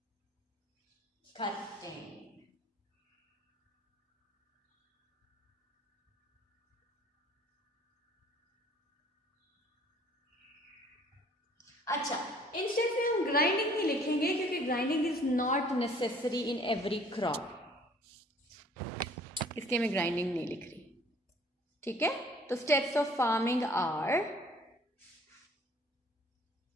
कटिंग। अच्छा, इन स्टेप्स में हम ग्राइंडिंग नहीं लिखेंगे क्योंकि grinding is not necessary in every crop, इसलिए मैं ग्राइंडिंग नहीं लिख रही, ठीक है। तो steps of farming are,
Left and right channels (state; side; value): normal; both; correlation 0.56